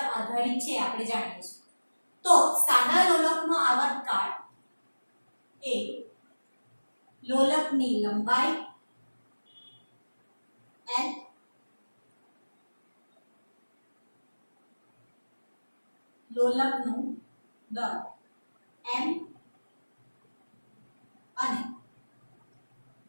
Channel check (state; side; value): inverted; both; correlation -1.00